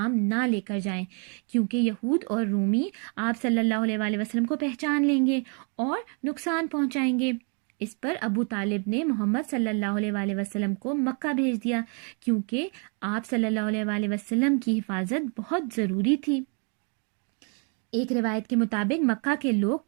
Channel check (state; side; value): quieter; left; 38.5 dB